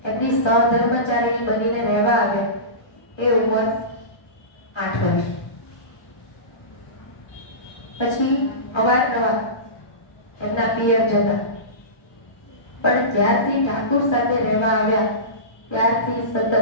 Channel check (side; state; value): right; late; 1.3 ms